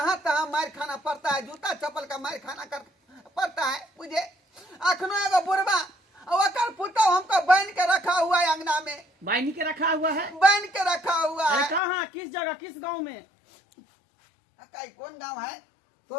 तहाँ मार खाना पड़ता है, जूता चप्पल का मार खाना पड़ता है मुझे। अखनो एगो बुढ़वा और पुतो हमको बांध के रखा हुआ है, अंगना में बाइनी के रखा हुआ है। बांध के रखा हुआ अरे है। कहाँ, किस जगह, किस गांव में? अकाई कौन गांव है?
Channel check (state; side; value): drops out; right; at 11.8 s